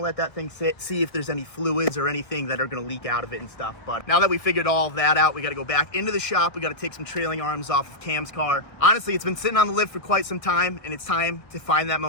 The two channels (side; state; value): right; late; 1.6 ms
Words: to let that thing sit, see if there's any fluids or anything that are going to leak out of it and stuff. But now that we figured all of that out, we got to go back into the shop. We got to take some trailing arms off of Cam's car. Honestly, it's been sitting on the lift for quite some time, and it's time to find that